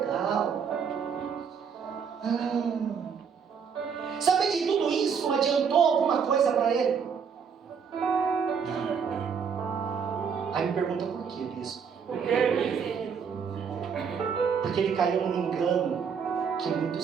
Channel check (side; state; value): left; quieter; 6.6 dB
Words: Saber de tudo isso adiantou alguma coisa para ele? Não. Aí me pergunta por quê, bispo? Porque ele caiu num engano que